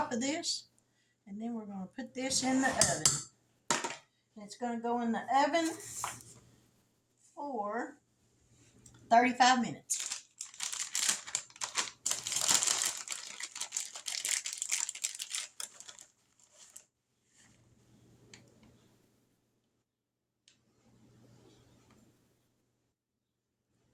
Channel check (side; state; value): both; identical; correlation 1.00